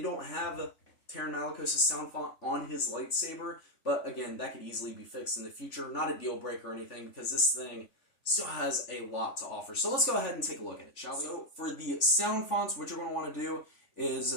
have Terran Malicos' sound font on his lightsaber, but again, that could easily be fixed in the future. Not a deal breaker or anything because this thing still has a lot to offer. So let's go ahead and take a look at it, shall we? So for the sound fonts, what you're going to want to do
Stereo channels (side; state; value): right; late; 3.4 ms